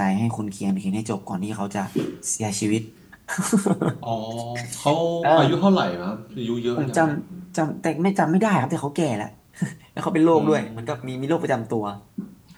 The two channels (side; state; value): both; identical; correlation 1.00